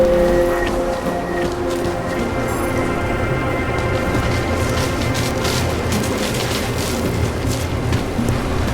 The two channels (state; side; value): identical; both; correlation 1.00